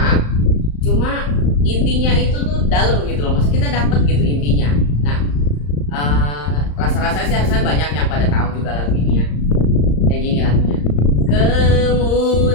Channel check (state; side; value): late; right; 35 ms